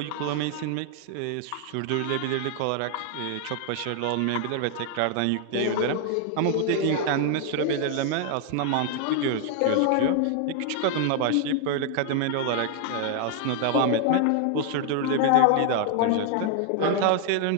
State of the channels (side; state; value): both; different; correlation 0.00